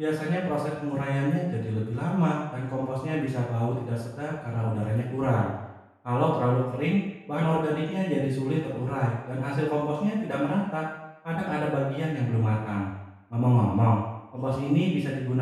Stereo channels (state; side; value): identical; both; correlation 1.00